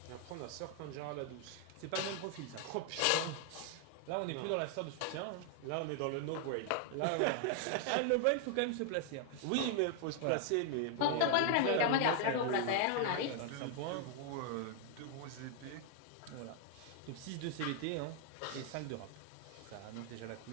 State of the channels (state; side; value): different; both; correlation 0.00